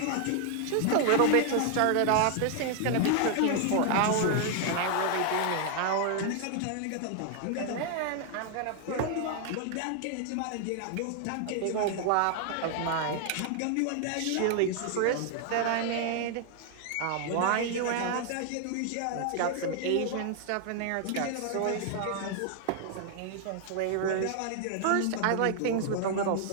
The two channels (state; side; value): different; both; correlation 0.00